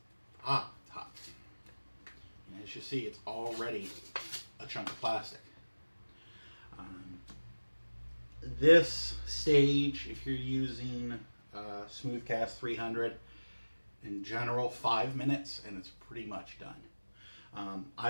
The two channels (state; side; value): inverted; both; correlation -1.00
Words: hot. And as you see, it's already a chunk of plastic. This stage, if you're using Smoothcast 300, in general 5 minutes, and it's pretty much done.